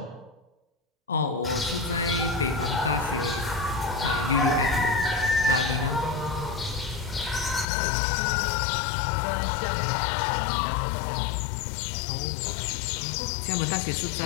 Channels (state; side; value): drops out; right; at 7.7 s